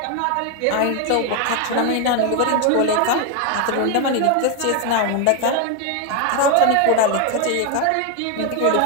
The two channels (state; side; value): different; both; correlation 0.01